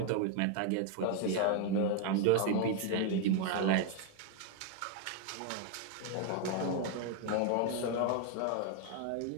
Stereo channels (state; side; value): different; both; correlation 0.00